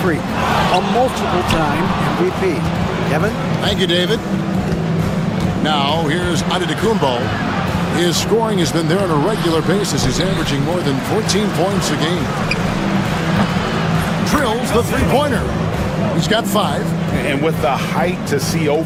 Freak, a multiple-time MVP. Kevin? Thank you, David. Now, here's Antetokounmpo. His scoring has been there on a regular basis. He's averaging more than 14 points a game. Drills the three-pointer. He's got 5. And with the height to see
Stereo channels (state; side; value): identical; both; correlation 1.00